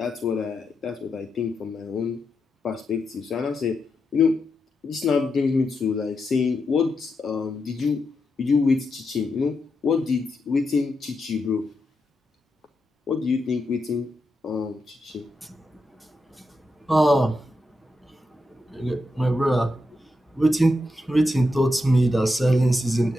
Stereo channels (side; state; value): both; normal; correlation 0.85